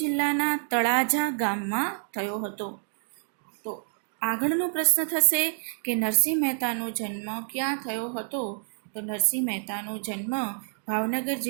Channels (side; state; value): left; silent; digital silence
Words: તળાજા ગામમાં થયો હતો. તો આગળનો પ્રશ્ન થશે કે નરસિંહ મહેતાનો જન્મ ક્યાં થયો હતો? તો નરસિંહ મહેતાનો જન્મ ભાવનગર